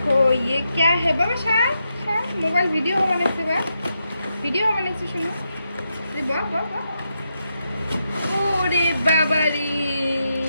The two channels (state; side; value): inverted; both; correlation -0.84